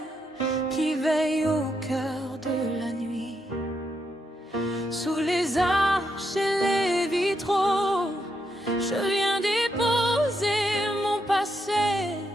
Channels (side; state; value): both; normal; correlation 0.80